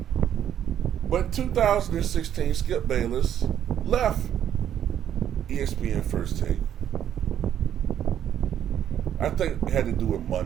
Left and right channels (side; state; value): left; quieter; 10.1 dB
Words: But in 2016, Skip Bayless left ESPN First Take. I think it had to do with